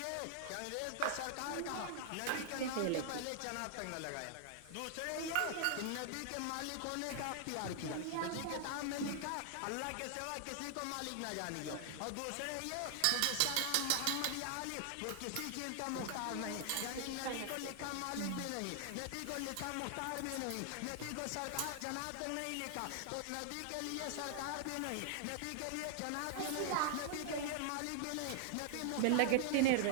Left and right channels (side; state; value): both; different; correlation -0.01